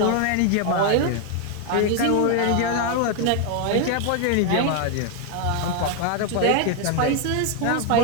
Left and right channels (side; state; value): both; different; correlation 0.01